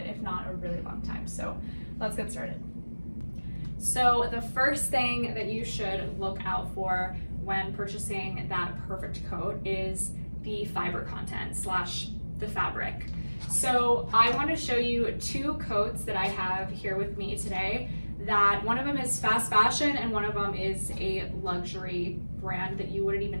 if not a really long time. So let's get started. So the first thing that you should look out for when purchasing that perfect coat is the fiber content / the fabric. So I want to show you two coats that I have here with me today. That one of them is fast fashion and one of them is a luxury brand that you wouldn't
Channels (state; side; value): inverted; both; correlation -1.00